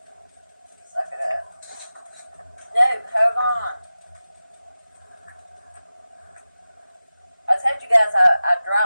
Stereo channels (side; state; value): both; inverted; correlation -0.95